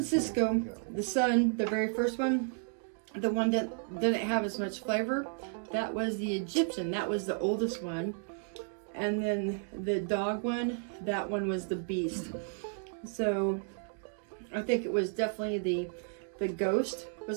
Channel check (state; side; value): silent; left; 56 dB below the other